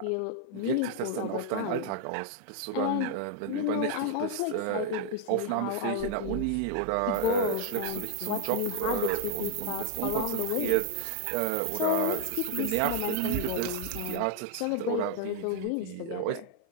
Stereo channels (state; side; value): different; both; correlation 0.00